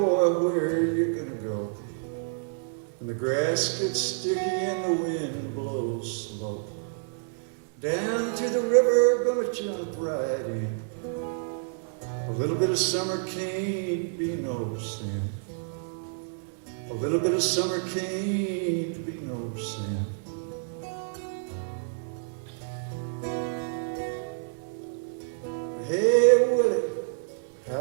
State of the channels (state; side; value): silent; left; 59 dB below the other